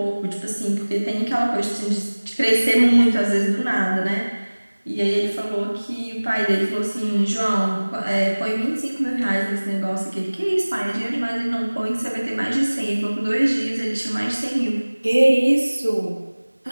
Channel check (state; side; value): inverted; both; correlation -1.00